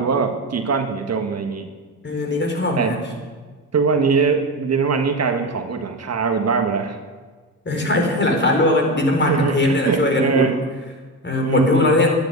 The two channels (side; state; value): both; normal; correlation 0.18